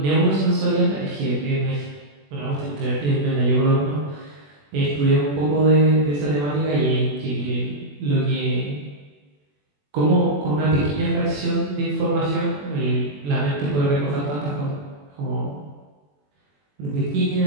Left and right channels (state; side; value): late; left; 21 ms